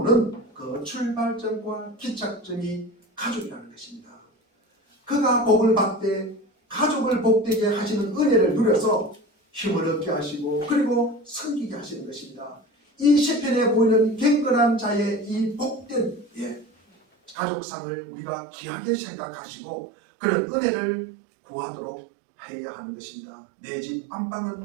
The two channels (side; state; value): left; drops out; at 17.4 s